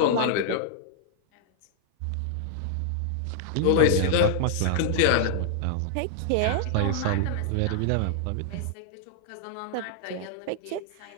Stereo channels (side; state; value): both; different; correlation -0.01